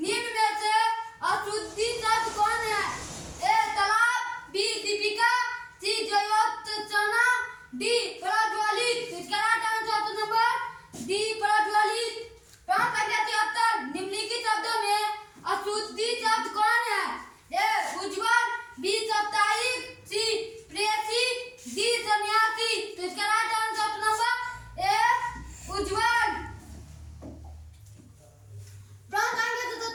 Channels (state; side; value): identical; both; correlation 1.00